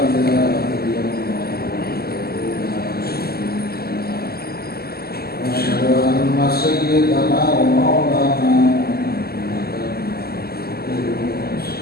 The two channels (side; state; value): right; late; 0.45 ms